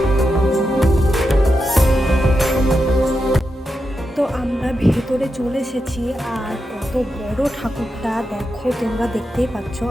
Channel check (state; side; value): normal; both; correlation 0.87